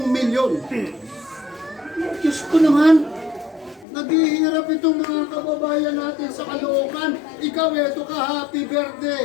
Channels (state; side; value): drops out; right; at 3.9 s